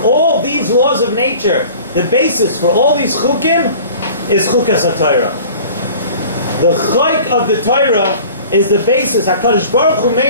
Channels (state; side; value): inverted; both; correlation -0.44